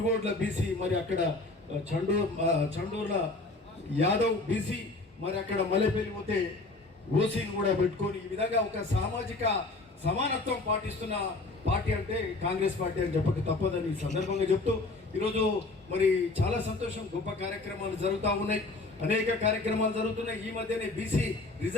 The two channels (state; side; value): quieter; right; 3.2 dB